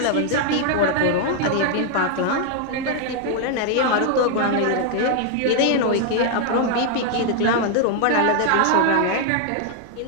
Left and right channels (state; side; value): different; both; correlation 0.00